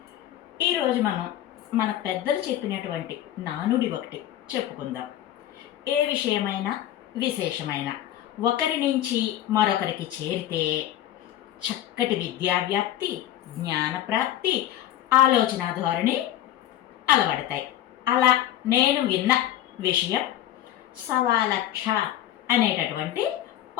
ఈరోజు మనం మన పెద్దలు చెప్పినటువంటి నానుడి ఒకటి చెప్పుకుందాం. ఏ విషయమైనా విశేషమైన ఒకరి నుంచి మరొకరికి చేరితే చక్కటి విద్యావ్యాప్తి, జ్ఞానప్రాప్తి, ఆలోచన ధోరణి అలవడతాయి. అలా నేను విన్న విషయం సవాలక్ష అనేటటువంటి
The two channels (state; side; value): quieter; right; 12.4 dB